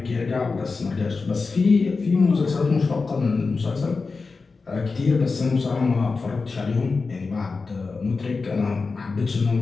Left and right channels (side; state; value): right; quieter; 4.3 dB